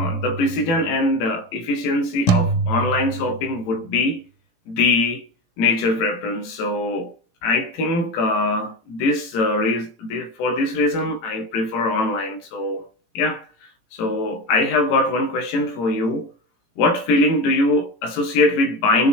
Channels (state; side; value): late; right; 17 ms